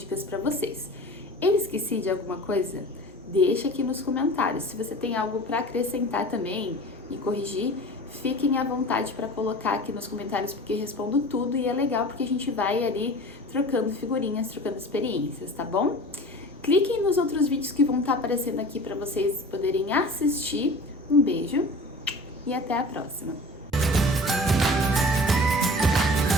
para vocês. Eu esqueci de alguma coisa? Deixa aqui nos comentários. Se você tem algo para acrescentar também e corrigir, fiquem à vontade para colocar aqui nos comentários, porque eu respondo tudo e é legal porque a gente vai ali trocando figurinhas, trocando experiências, tá bom? Cliquem nos outros vídeos que vão estar aparecendo aqui para vocês poderem assistir. Um beijo e até a próxima!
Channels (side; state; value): both; normal; correlation 0.39